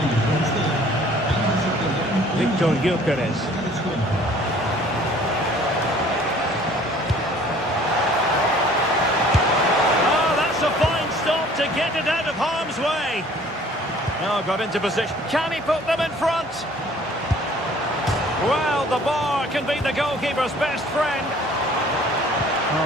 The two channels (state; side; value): normal; both; correlation 0.54